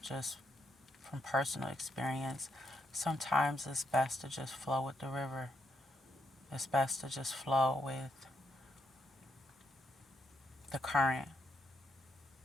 just from personal experience, sometimes it's best to just flow with the river. It's best to just flow with the current.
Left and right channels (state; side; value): normal; both; correlation 0.78